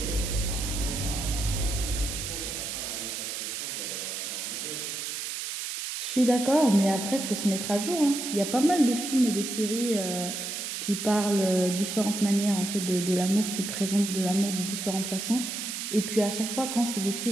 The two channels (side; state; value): right; noise; hiss, 5 dB below the sound